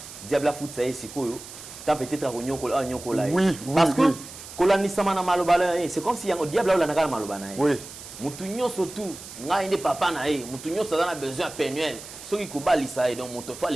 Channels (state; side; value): noise; right; hiss, 14 dB below the sound